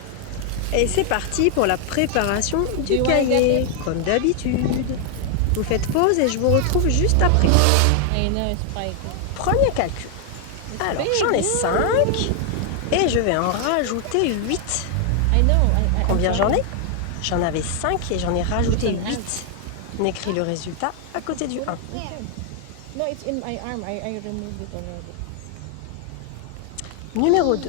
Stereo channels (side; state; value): both; different; correlation 0.00